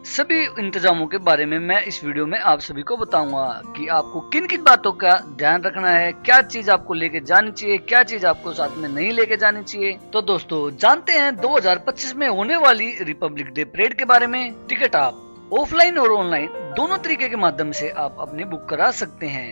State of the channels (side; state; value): both; inverted; correlation -1.00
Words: सभी इंतजामों के बारे में मैं इस वीडियो में आप सभी को बताऊंगा कि आपको किन किन बातों का ध्यान रखना है, क्या चीज आपको लेके जानी चाहिए, क्या चीज आपको साथ में नहीं लेके जानी चाहिए। तो दोस्तों जानते हैं 2025 में होने वाली रिपब्लिक डे परेड के बारे में। टिकट आप ऑफलाइन और ऑनलाइन दोनों तरीके के माध्यम से आप अपने बुक करा सकते